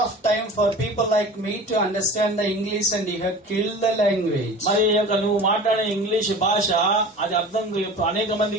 time for people like me to understand the English, and you have killed the language. మరి నువ్వు మాట్లాడే English భాష అది అర్థం అనేక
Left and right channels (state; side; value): normal; both; correlation 0.38